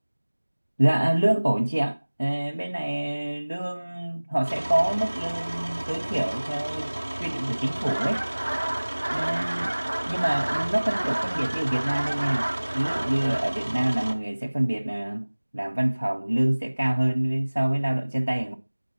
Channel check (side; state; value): both; inverted; correlation -1.00